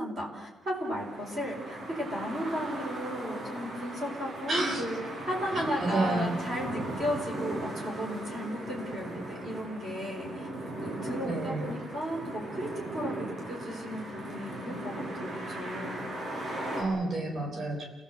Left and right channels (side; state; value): both; normal; correlation 0.77